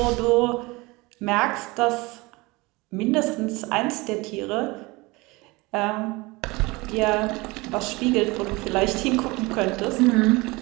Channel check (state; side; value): quieter; left; 23.5 dB